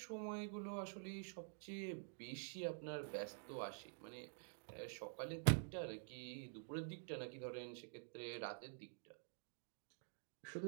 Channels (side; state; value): left; silent; digital silence